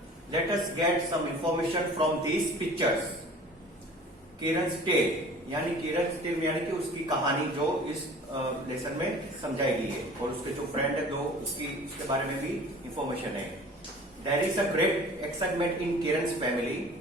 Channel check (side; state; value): both; normal; correlation 0.45